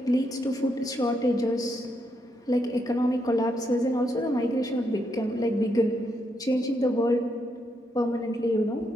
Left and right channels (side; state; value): both; normal; correlation 0.79